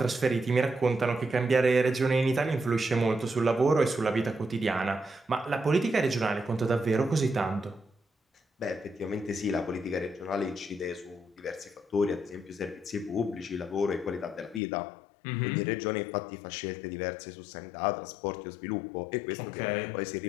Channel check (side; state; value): right; drops out; at 14.6 s